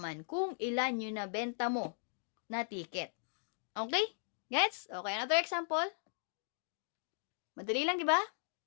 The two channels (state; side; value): silent; right; digital silence